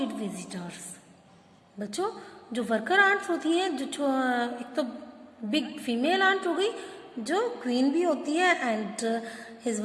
visitors. बच्चों, जो worker ants होती हैं, जो एक तो big female aunt हो गई जो क्वीन भी होती है, and his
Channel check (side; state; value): both; identical; correlation 1.00